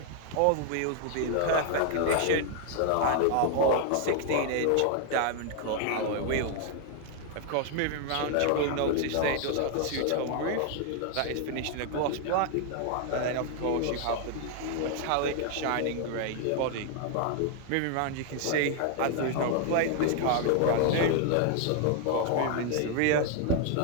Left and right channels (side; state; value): both; different; correlation 0.00